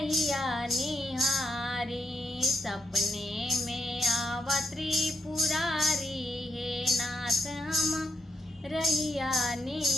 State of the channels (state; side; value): normal; both; correlation 0.79